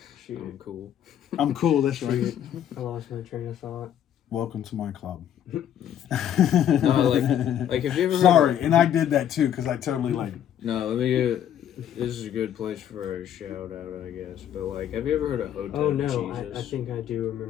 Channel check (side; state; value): right; quieter; 10.1 dB